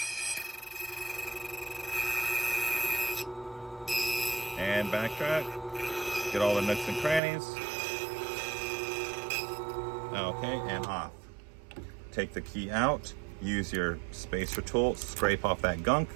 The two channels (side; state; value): left; drops out; at 7.2 s